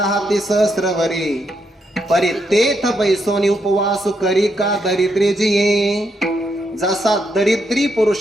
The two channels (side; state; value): both; normal; correlation 0.79